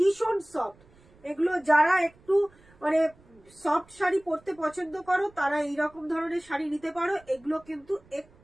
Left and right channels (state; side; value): noise; right; rumble, 29 dB below the sound